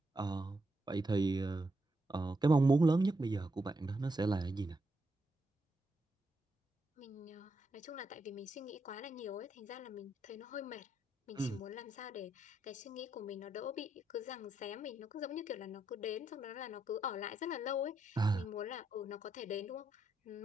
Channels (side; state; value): both; normal; correlation 0.80